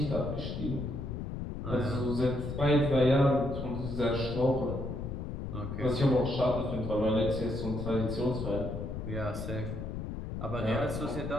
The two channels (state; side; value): noise; left; rumble, 5 dB below the sound